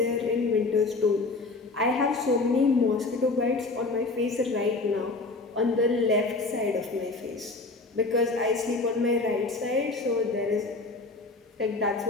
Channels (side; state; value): right; quieter; 3.5 dB